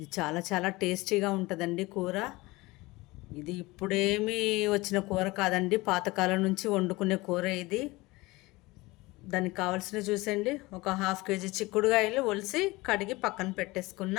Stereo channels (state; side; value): quieter; right; 21.5 dB